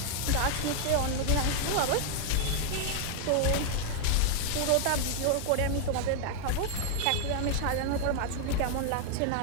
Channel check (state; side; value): different; both; correlation 0.00